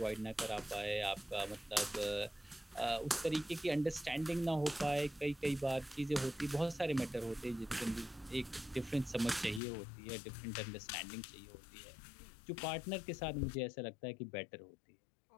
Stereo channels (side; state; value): right; drops out; at 9.6 s